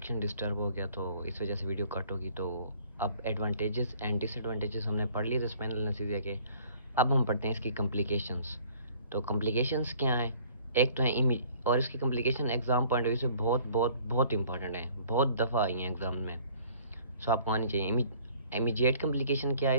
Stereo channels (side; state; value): both; inverted; correlation -0.55